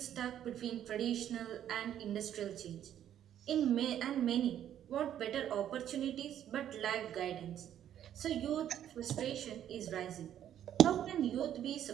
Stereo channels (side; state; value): left; quieter; 10.6 dB